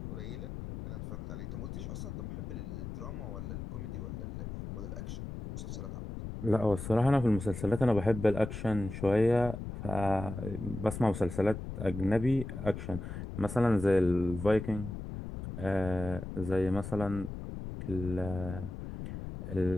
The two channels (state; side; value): noise; left; rumble, 7 dB below the sound